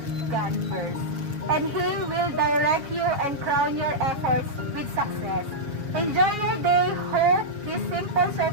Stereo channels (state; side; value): late; left; 7.2 ms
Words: God first. And He will direct you and crown your efforts with success. Enjoy your day. Hope this simple